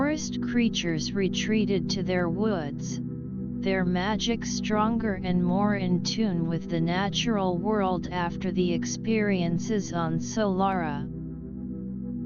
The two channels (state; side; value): identical; both; correlation 1.00